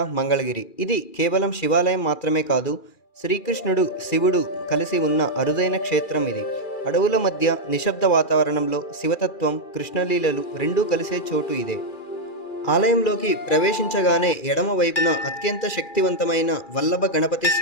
మంగళగిరి. ఇది కేవలం శివాలయం మాత్రమే కాదు, శ్రీకృష్ణుడు శివుడు కలిసి ఉన్న అరుదైన క్షేత్రం ఇది. అడవుల మధ్య నిశ్శబ్ద వాతావరణంలో శివతత్వం, కృష్ణలీలలు రెండూ కలిసే చోటు ఇదే. ఆలయంలోకి ప్రవేశించగానే ఎడమ వైపున అత్యంత శక్తివంతమైన వల్లభ గణపతి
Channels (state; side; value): late; right; 2.4 ms